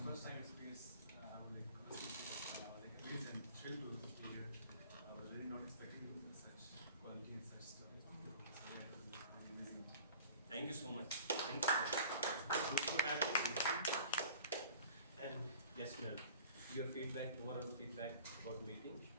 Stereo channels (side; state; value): both; inverted; correlation -0.45